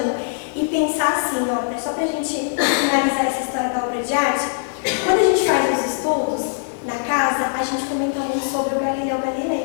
e pensar assim, ó, só pra gente finalizar essa história da obra de arte. Quando a gente faz os estudos na casa, a gente comenta muito sobre o Galileu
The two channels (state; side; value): silent; right; 56 dB below the other